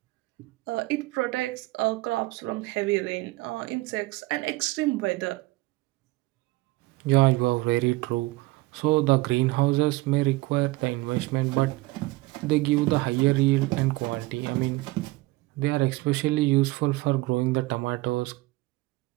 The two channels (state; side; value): quieter; left; 21.1 dB